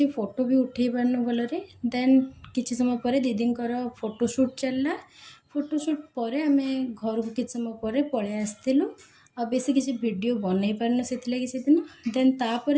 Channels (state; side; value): identical; both; correlation 1.00